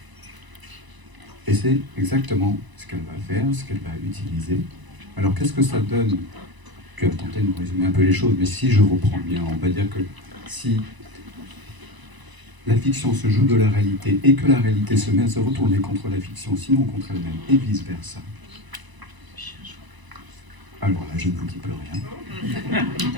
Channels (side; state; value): left; late; 1.0 ms